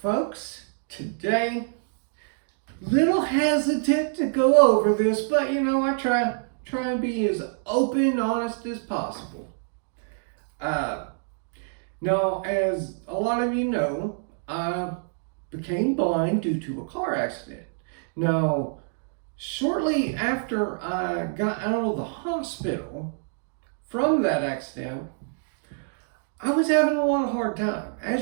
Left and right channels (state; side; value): silent; left; digital silence